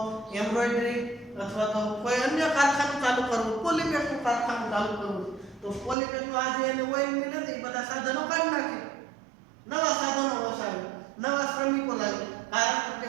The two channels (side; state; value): left; drops out; at 6.0 s